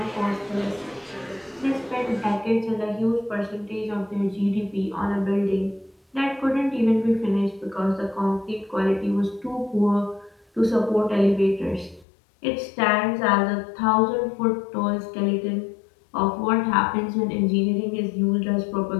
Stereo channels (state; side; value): drops out; right; at 12.1 s